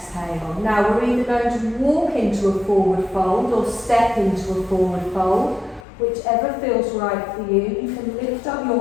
Now we're either going to walk into a forward fold or step into a forward fold, Whichever feels right for you. You can lift up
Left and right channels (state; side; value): drops out; right; at 5.9 s